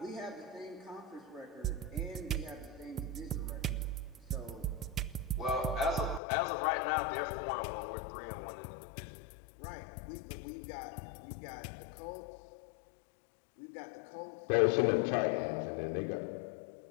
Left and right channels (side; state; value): right; drops out; at 6.2 s